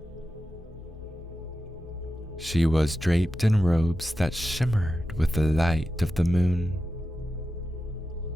She was draped in robes that shimmered with the light of the moon,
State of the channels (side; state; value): both; normal; correlation 0.91